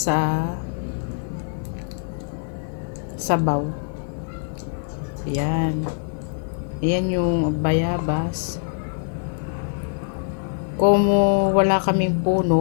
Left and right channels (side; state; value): right; silent; 59 dB below the other